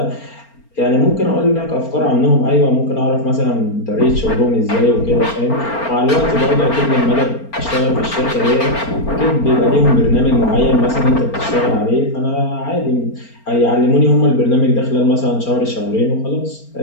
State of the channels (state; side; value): late; right; 4.4 ms